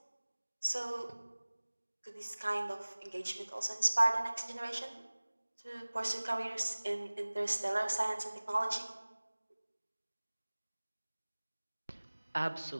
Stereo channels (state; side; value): inverted; both; correlation -1.00